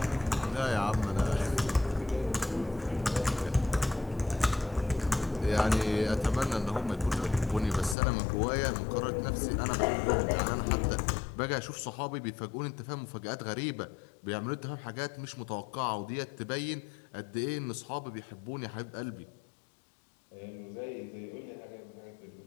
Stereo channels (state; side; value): drops out; right; at 8.0 s